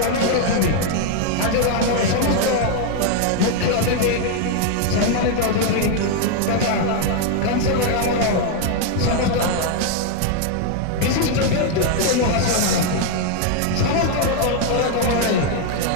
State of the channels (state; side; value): different; both; correlation 0.00